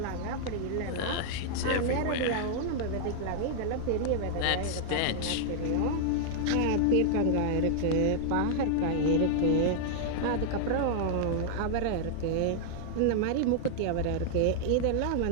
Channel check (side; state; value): both; different; correlation -0.01